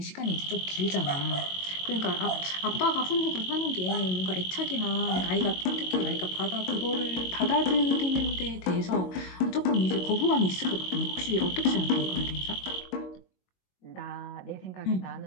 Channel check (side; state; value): right; late; 22 ms